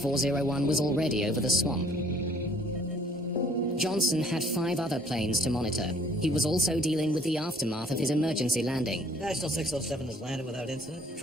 was already over the swamp. Johnson had 5 other planes to monitor. He was also dealing with the aftermath of his emergency landing. National 607 has landed without incident.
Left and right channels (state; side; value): normal; both; correlation 0.59